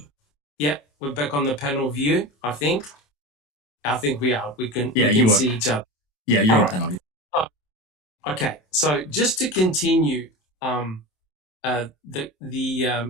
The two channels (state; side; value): late; right; 27 ms